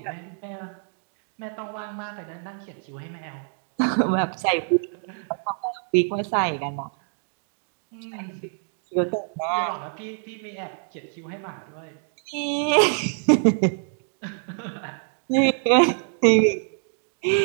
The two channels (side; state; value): left; silent; 55 dB below the other